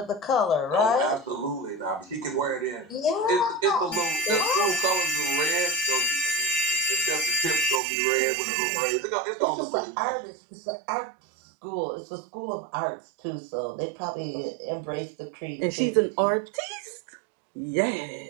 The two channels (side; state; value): left; drops out; at 7.8 s